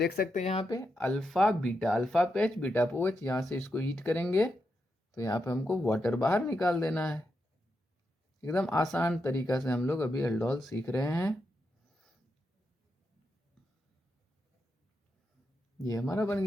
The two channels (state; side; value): normal; both; correlation 0.85